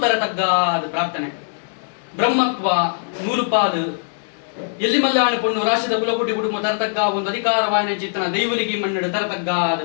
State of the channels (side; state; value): right; silent; digital silence